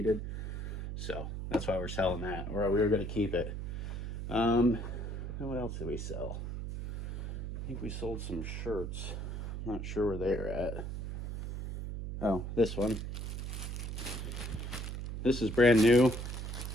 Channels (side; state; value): right; noise; hum, 5 dB below the sound